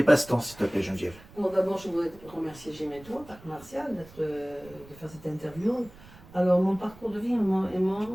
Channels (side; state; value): right; noise; rumble, 21 dB below the sound